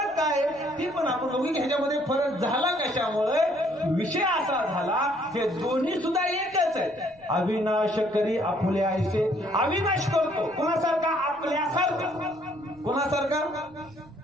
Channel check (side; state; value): right; noise; rumble, 27 dB below the sound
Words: काय? ती पण आपण दोघी ह्याच्यामध्ये फरक झाला कशामुळे? विषय असा झाला, हे दोन्ही सुद्धा एकच आहेत. अविनाश करी आपुल्या आईसे. अविनाश करतो कोणासारखा? आपल्यासारखा. कोणासारखा?